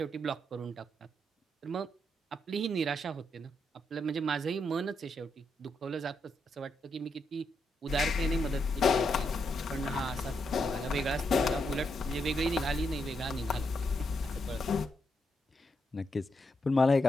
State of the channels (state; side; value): normal; both; correlation 0.81